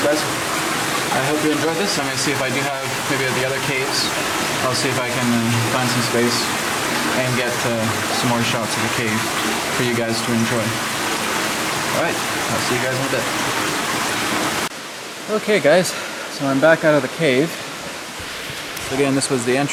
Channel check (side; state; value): both; identical; correlation 1.00